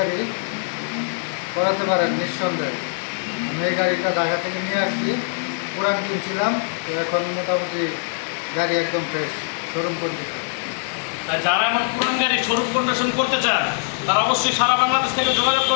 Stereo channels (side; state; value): right; silent; 59 dB below the other